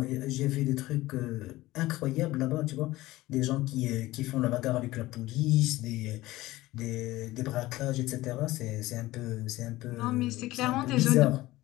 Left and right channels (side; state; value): right; quieter; 17.8 dB